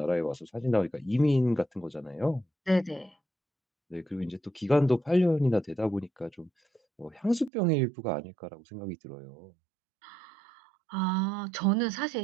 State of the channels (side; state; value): left; drops out; at 7.5 s